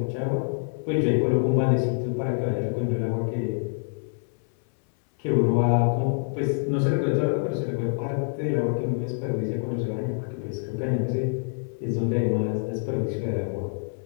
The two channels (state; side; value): silent; right; 61 dB below the other